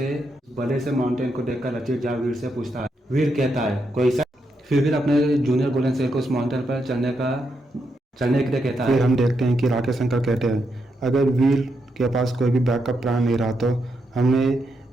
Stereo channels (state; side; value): normal; both; correlation 0.81